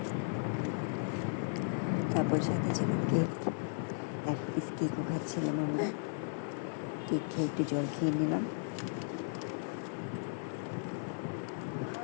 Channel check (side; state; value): right; silent; digital silence